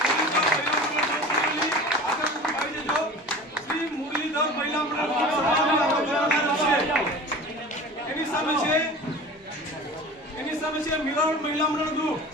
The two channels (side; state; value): both; normal; correlation 0.37